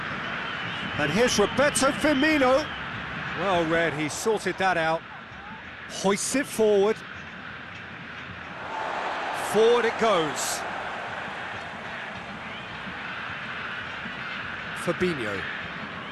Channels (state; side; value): identical; both; correlation 1.00